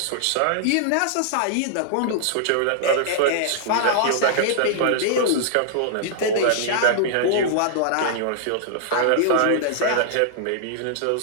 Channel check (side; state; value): both; different; correlation -0.01